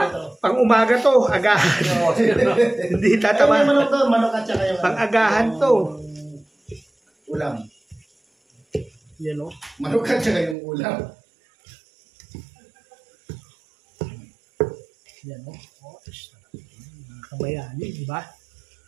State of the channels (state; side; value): drops out; left; at 10.6 s